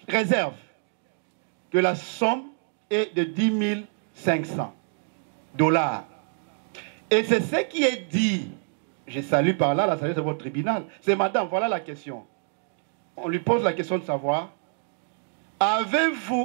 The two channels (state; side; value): silent; left; 61 dB below the other